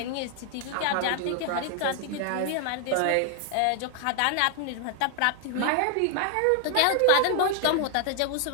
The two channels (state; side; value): different; both; correlation 0.00